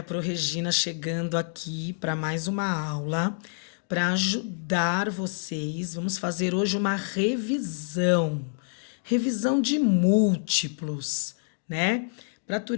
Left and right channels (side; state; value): right; silent; digital silence